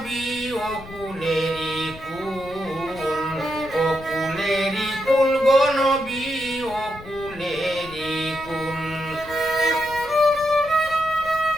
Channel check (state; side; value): noise; left; rumble, 17 dB below the sound